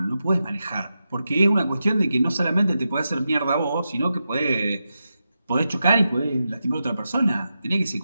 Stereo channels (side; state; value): both; inverted; correlation -0.89